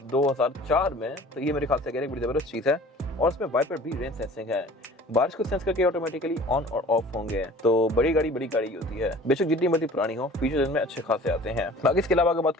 2004 में, तो ये मेरे ख्याल से एक बड़ी जबरदस्त चीज है और इसमें वाइपर भी रेन सेंसिंग है, बारिश को सेंस करके ऑटोमेटिकली ऑन और ऑफ होंगे। तो बड़ी गाड़ी होती है, बेशक जितनी मर्जी पुरानी हो, फीचर्स इनमें अच्छे खासे आते हैं। बाकी इसके अलावा अगर बात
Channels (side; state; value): both; normal; correlation 0.46